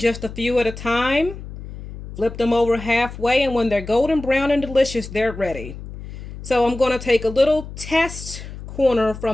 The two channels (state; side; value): noise; left; hum, 12 dB below the sound